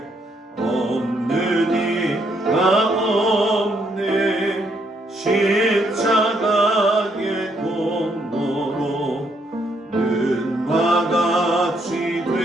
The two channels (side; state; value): both; normal; correlation 0.73